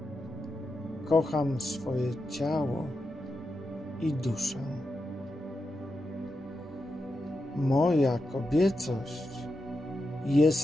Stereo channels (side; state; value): both; normal; correlation 0.88